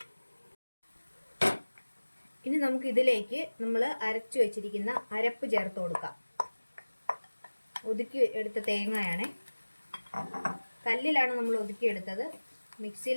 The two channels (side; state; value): both; inverted; correlation -1.00